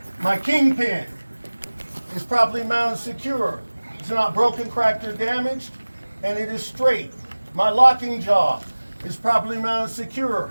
My kingpin is properly mounted, secure. It's not broken, cracked, or damaged, and it is straight. My locking jaw is properly mounted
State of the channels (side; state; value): both; inverted; correlation -1.00